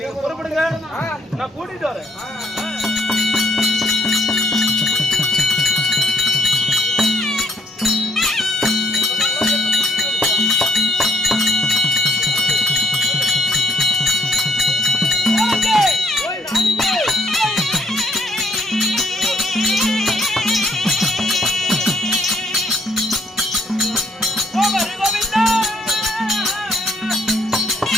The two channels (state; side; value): normal; both; correlation 0.69